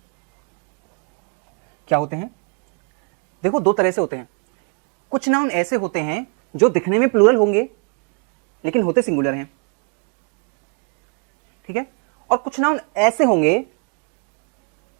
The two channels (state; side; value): quieter; left; 36.3 dB